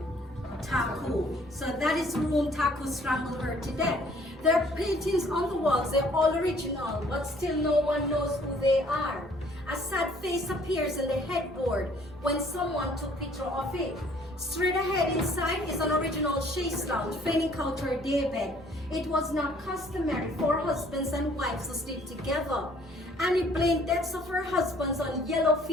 Taku. So that is room Taku strangled her to death. There are paintings on the walls, they're all original, but still no one knows who they are. A sad face appears in the headboard when someone took picture of it. Straight ahead inside is an original chaise lounge, feigning out her daybed. It was not customary for husbands and wives to sleep together. Annie blamed deaths of her husbands on yellow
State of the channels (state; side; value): normal; both; correlation 0.59